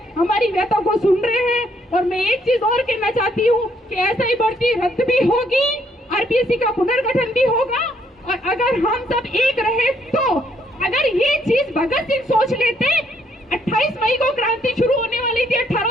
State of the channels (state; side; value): normal; both; correlation 0.70